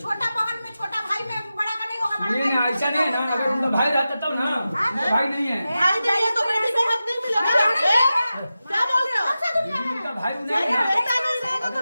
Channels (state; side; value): inverted; both; correlation -0.93